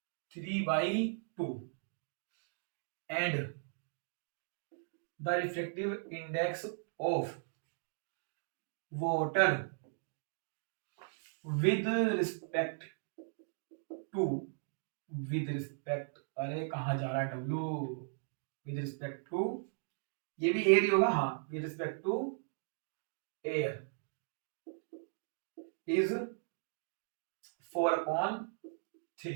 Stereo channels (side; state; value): left; silent; digital silence